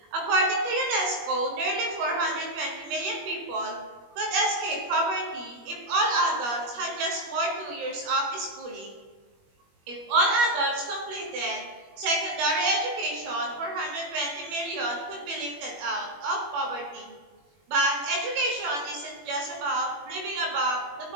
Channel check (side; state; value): left; late; 21 ms